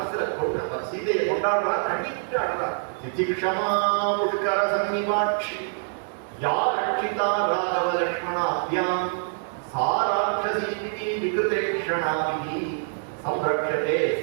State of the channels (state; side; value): silent; left; digital silence